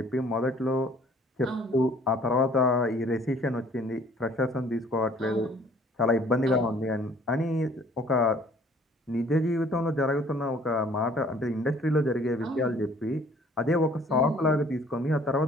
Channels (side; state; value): both; normal; correlation 0.56